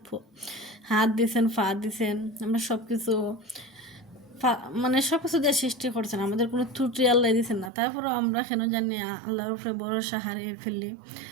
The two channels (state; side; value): drops out; left; at 7.7 s